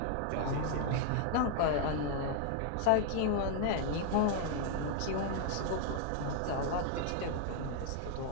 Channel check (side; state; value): both; different; correlation 0.00